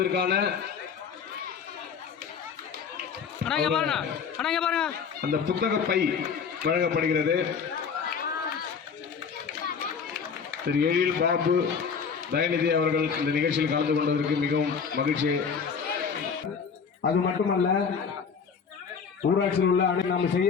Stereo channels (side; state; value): right; quieter; 6.2 dB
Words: அந்த புத்தக பை வழங்கப்படுகிறது. திரு எழில் பாபு தயநிதி அவர்கள் இந்த நிகழ்ச்சியில் கலந்து கொண்டதற்கு மிகவும் மகிழ்ச்சி. அது மட்டுமல்ல, ஊராட்சியில் உள்ள நாம்